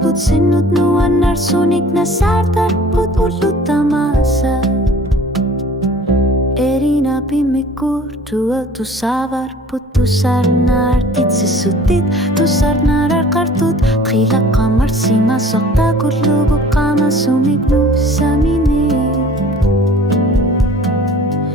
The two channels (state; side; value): normal; both; correlation 0.48